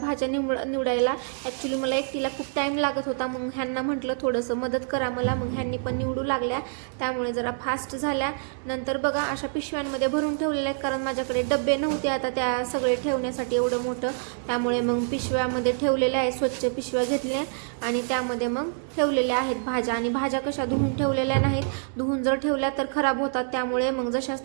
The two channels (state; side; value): silent; left; digital silence